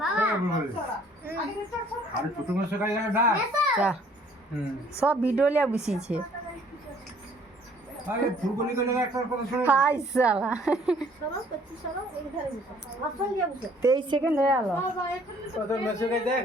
সব ভিডিও লিয়া বসিয়েছে হাই সালা 23 সেকেন্ড হয়ে গেল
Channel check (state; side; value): normal; both; correlation 0.59